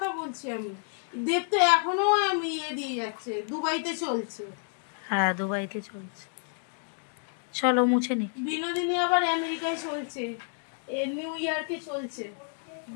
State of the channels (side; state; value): right; silent; 55 dB below the other